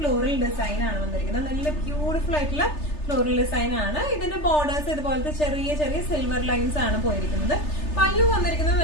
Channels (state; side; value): late; right; 3.3 ms